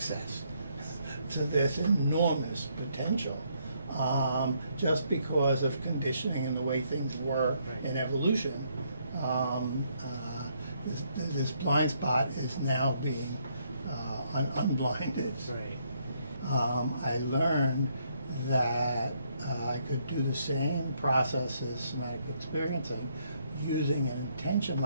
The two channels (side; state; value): both; inverted; correlation -0.72